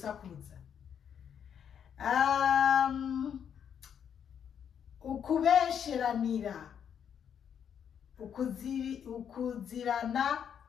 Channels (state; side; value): quieter; right; 8.2 dB